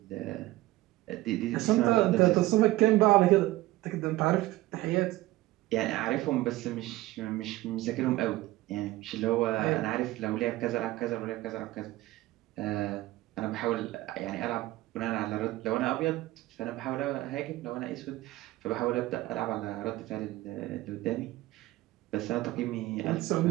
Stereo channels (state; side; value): quieter; left; 17.6 dB